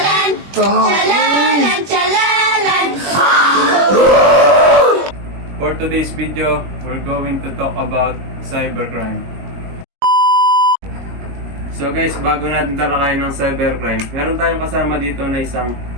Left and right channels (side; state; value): left; late; 21 ms